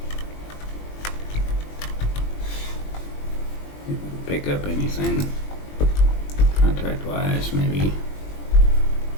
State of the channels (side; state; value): right; late; 20 ms